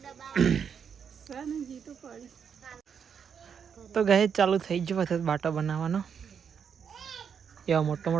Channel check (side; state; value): left; quieter; 7.2 dB